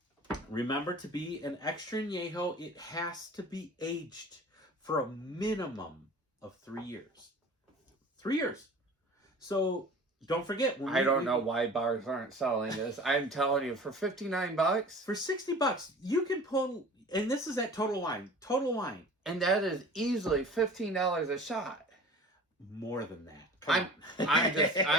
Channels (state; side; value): normal; both; correlation 0.42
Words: Remember, to be an extra añejo, it has to be aged for a minimum of 3 years. 3 years. So don't forget. I don't know why bars aren't selling this. I'm telling you, for $59, for $60, you can pull. And this is at Total Wine. Total Wine, and that is easily $15 a shot. More than that.